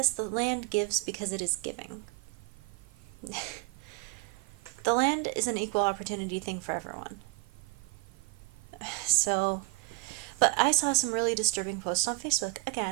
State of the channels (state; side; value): quieter; left; 23.8 dB